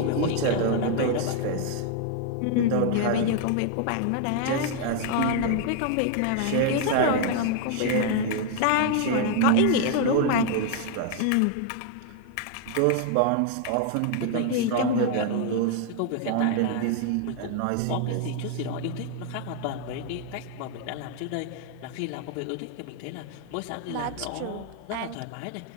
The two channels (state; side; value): different; both; correlation 0.00